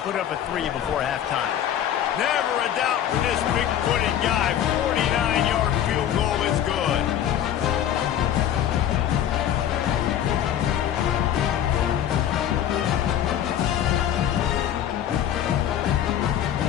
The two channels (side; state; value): right; quieter; 10.5 dB